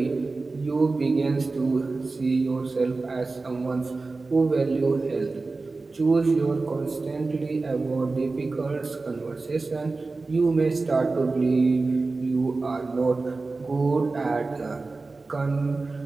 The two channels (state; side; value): quieter; left; 3.7 dB